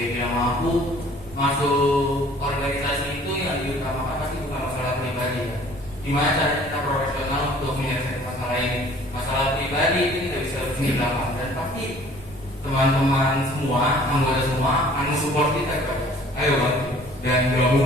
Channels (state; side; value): normal; both; correlation 0.53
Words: bilang mampu masuk organisasi itu yang diutamakan pasti bukan masalah pribadi ya. Gimana cara kita profesional untuk menyelesaikan masalah ini? Masalah pribadi itu tidak bisa di belakang dan pasti teman-teman semua, anggota semua akan support kita kan. Ayo bantu. Dan kalau